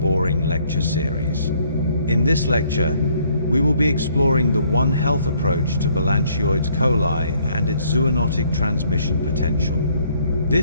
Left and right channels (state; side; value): inverted; both; correlation -0.65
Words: Lecture Series. In this lecture, we will be exploring the One Health approach to Balantioides coli and its zoonotic transmission potential.